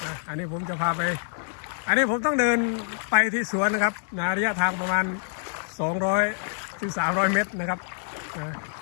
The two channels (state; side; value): silent; right; digital silence